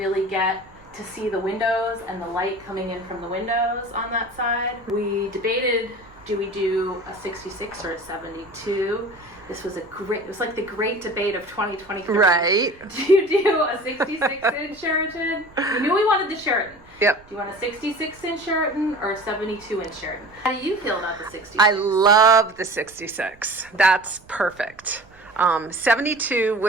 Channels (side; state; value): right; noise; rumble, 26 dB below the sound